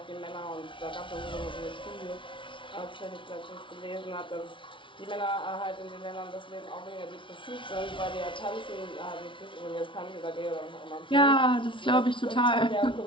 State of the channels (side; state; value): right; late; 0.25 ms